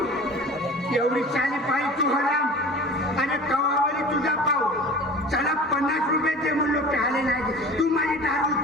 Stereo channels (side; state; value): both; normal; correlation 0.40